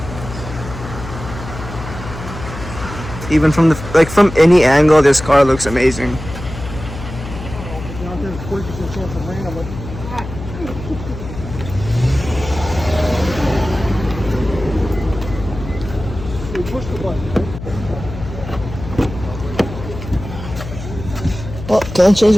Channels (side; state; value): left; noise; hum, 10 dB below the sound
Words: Even from from any angle, this car looks amazing. Well, can't change